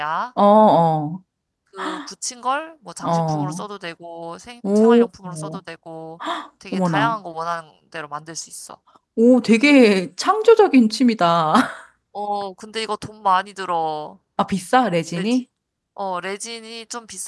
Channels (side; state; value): both; identical; correlation 1.00